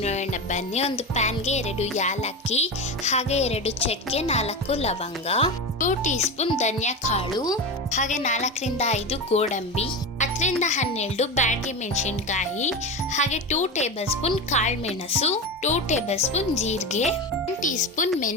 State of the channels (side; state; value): both; normal; correlation 0.21